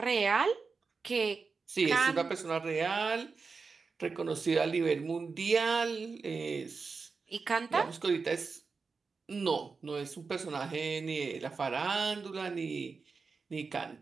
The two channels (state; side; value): quieter; left; 4.7 dB